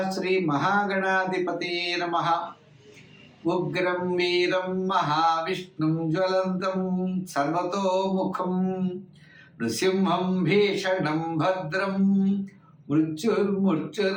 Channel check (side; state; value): both; identical; correlation 1.00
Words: శ్రీ మహాగణాధిపతి నమ. ఉగ్రం వీరం మహావిష్ణుం జ్వలంతం సర్వతోముఖం నృసింహం భీషణం భద్రం